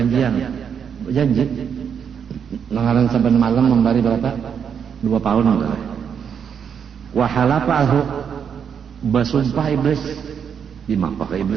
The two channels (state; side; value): quieter; left; 7.5 dB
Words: Berjanji langaran saban malam membari berapa? 2 pound. Wa halafahu, bersumpah iblis. Di maka